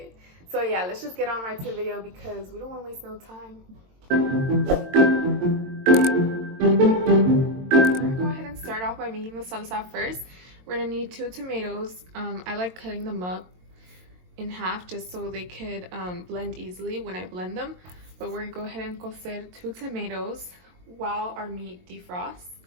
So yeah, let's just get on right to the video because we don't want to waste no time. We're going to go ahead and start off by making the salsa first. We're gonna need 2 tomatoes. I like cutting them up in half just so they could blend easily when I blend them. But we're gonna go ahead and cocer 2 tomatoes while our meat defrosts.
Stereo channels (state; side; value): late; left; 22 ms